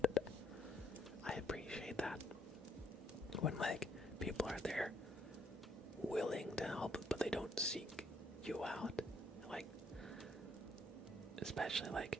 I appreciate that. When, like, people are there willing to help, but they don't seek you out. Like, especially, like,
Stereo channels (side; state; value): both; normal; correlation 0.69